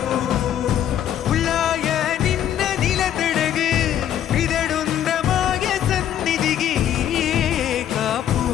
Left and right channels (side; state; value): right; quieter; 10.6 dB